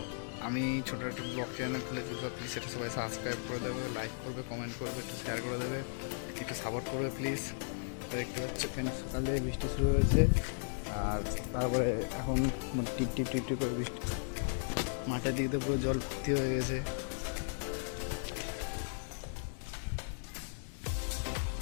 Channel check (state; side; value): silent; right; digital silence